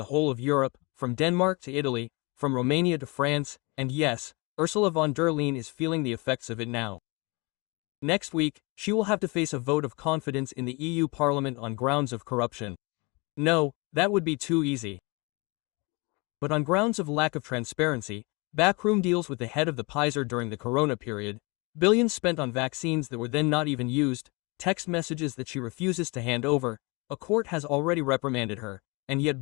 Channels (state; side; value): quieter; right; 28.1 dB